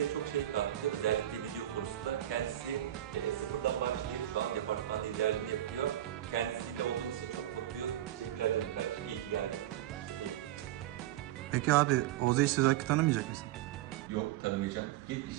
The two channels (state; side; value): quieter; left; 13.0 dB